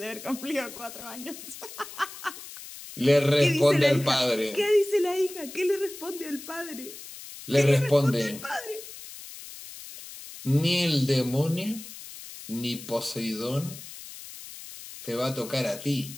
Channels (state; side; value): noise; left; hiss, 14 dB below the sound